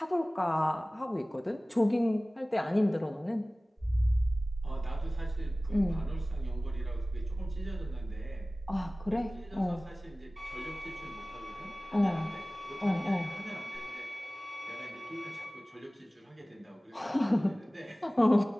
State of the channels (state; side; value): normal; both; correlation 0.98